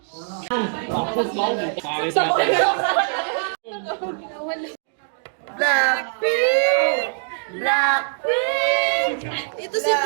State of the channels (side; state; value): left; silent; digital silence